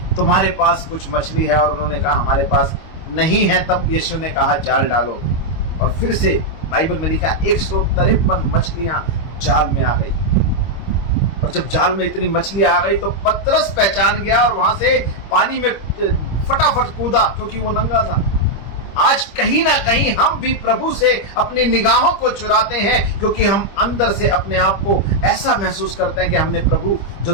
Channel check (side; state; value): right; late; 25 ms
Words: तुम्हारे पास कुछ मछली है, और उन्होंने कहा हमारे पास नहीं है। तब यीशु ने कहा जाल डालो, और फिर से बाइबल में लिखा 153 मछलियां जाल में आ गई। और जब जाल में इतनी मछलियां आ गई तो पतरस पहचान गया और वहां से पानी में फटाफट कूदा, क्योंकि वो नंगा था। आज कहीं ना कहीं हम भी प्रभु से अपनी निगाहों को चुराते हैं, क्योंकि हम अंदर से अपने आप को ऐसा महसूस करते हैं कि हमने प्रभु जो